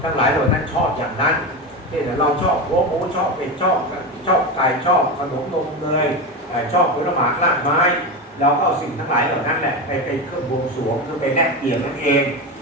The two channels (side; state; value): both; normal; correlation 0.19